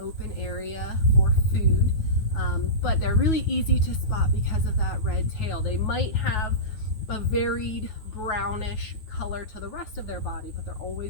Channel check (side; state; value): right; late; 9.3 ms